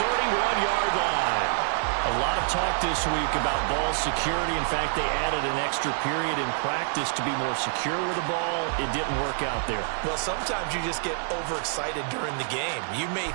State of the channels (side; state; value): left; silent; digital silence